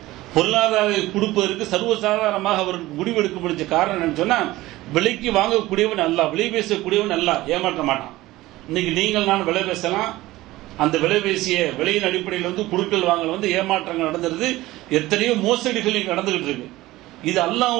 பொருளாதார கொடுப்பதற்கு சர்வசாதாரணமாக அவருக்கு முடிவெடுக்க முடிஞ்ச காரணம் என்னன்னு சொன்னா, விலைக்கு வாங்கக்கூடியவன் அல்ல, விலை பேசக்கூடியவன் அல்ல, ஏமாற்ற மாட்டான். இன்னைக்கு நீங்கள் நான் விலை பேசலாம், அந்த விலை பேசிய விலையின் அடிப்படையில் வந்து குடுக்கல் வாங்கல் வந்து ஏமாற்றங்கள் நடந்துருது, எத்தனையோ மோசடிகள் இங்க நடந்துகிட்டு இருக்கு. இது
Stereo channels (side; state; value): left; quieter; 17.7 dB